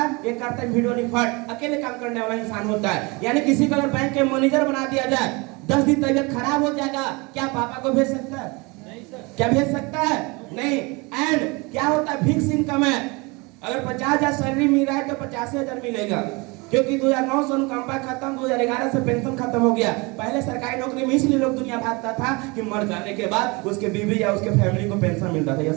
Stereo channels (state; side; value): quieter; left; 26.9 dB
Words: ये करता है वीडियो रिकॉर्ड, अकेले काम करने वाला इंसान होता है। यानी किसी को अगर बैंक के मैनेजर बना दिया जाए, 10 दिन तबियत खराब हो जाएगा, क्या पापा को भेज सकता है? क्या भेज सकता है? नहीं। एंड क्या होता है, फिक्स इनकम है। अगर 50,000 सैलरी मिल रहा है तो 85,000 मिलेगा, क्योंकि 2009 से अनुकंपा खत्म, 2011 से पेंशन खत्म हो गया। पहले सरकारी नौकरी में इसलिए लोग दुनिया भागता था कि मर जाने के बाद उसके बीवी या उसके फैमिली को पेंशन मिलता था।